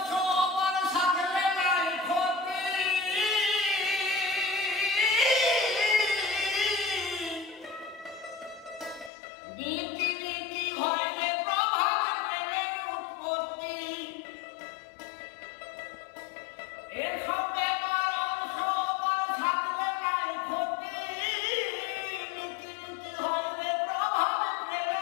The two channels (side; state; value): right; drops out; at 9.1 s